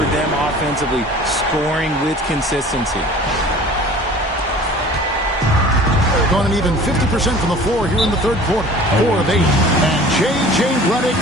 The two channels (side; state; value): both; normal; correlation 0.45